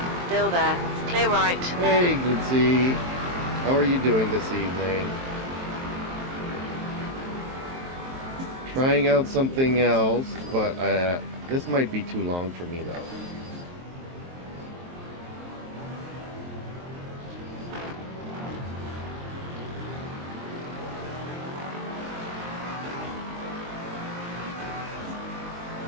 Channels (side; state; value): left; late; 23 ms